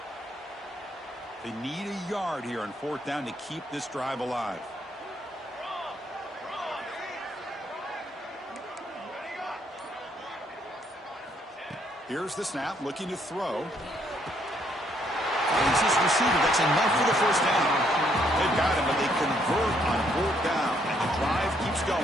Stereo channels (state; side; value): normal; both; correlation 0.70